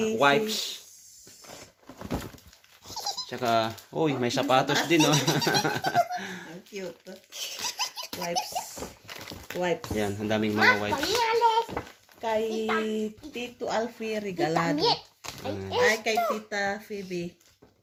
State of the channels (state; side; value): identical; both; correlation 1.00